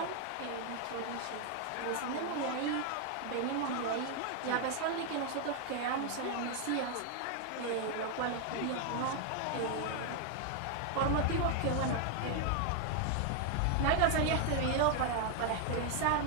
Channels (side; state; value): both; different; correlation 0.00